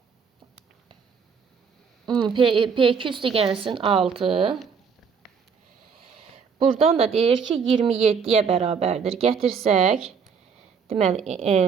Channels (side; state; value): left; quieter; 6.1 dB